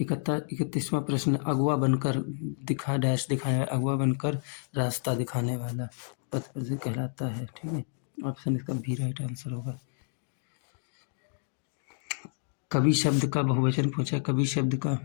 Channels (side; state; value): right; silent; digital silence